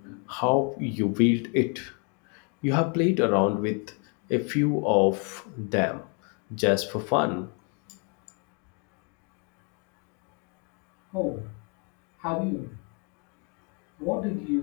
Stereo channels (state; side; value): quieter; right; 36.1 dB